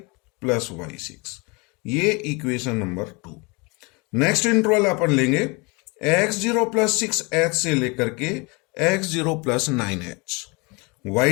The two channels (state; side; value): quieter; right; 28.6 dB